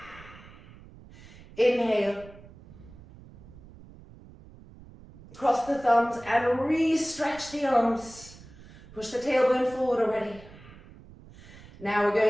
Inhale. Cross the thumbs and re-stretch the arms. Push the tailbone forward already. Now we're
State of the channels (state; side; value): noise; right; rumble, 20 dB below the sound